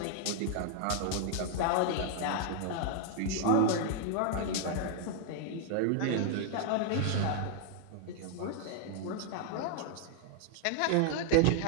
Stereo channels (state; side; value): different; both; correlation 0.00